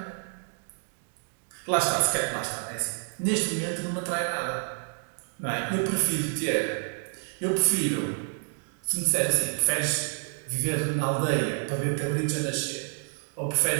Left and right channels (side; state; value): left; silent; 56 dB below the other